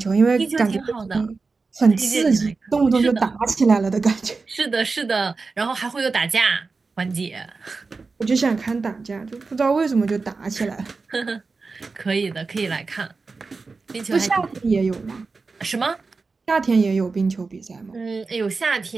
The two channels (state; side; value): quieter; left; 4.2 dB